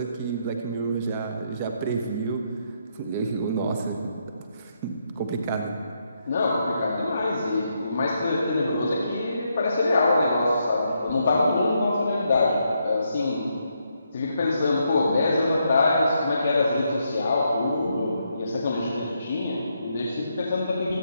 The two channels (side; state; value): both; inverted; correlation -0.78